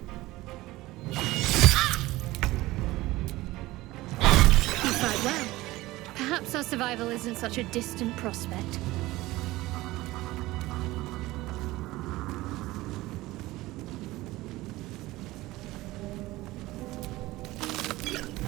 Perhaps our survival isn't such a distant prospect.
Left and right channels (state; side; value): quieter; left; 18.6 dB